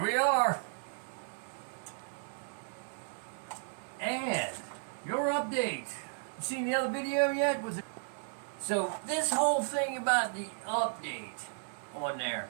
we are. And your update. You seen the other video yet? Was it? So this whole thing about the update on there,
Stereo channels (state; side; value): silent; left; digital silence